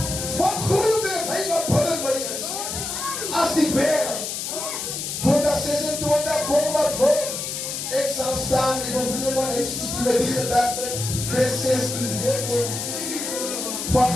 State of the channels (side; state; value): left; noise; hiss, 4 dB below the sound